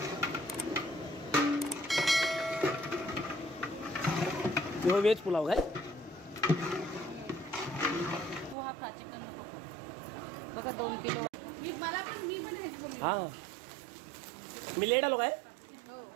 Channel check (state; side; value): drops out; left; at 8.6 s